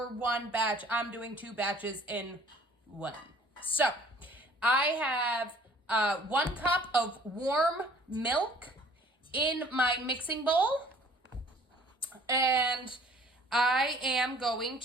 one batch. I'm doing 2 batches in one. So I have 1 cup of warm milk in my mixing bowl, and I am going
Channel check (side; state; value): both; normal; correlation 0.54